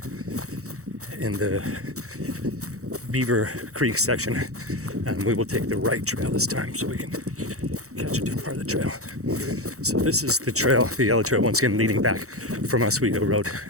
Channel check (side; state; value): left; late; 0.65 ms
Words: in the Beaver Creek section, and we will take the right trail this time so we can catch a different part of the trail. So this is the trail, the yellow trail, once again leading back from Oswego Road,